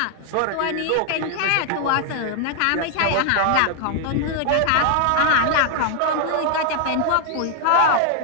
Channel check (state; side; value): different; both; correlation 0.00